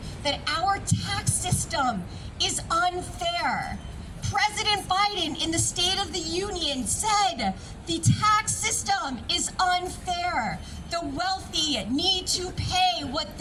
that our tax system is unfair. President Biden in the State of the Union said the tax system is unfair. The wealthy need to pay what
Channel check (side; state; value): both; identical; correlation 1.00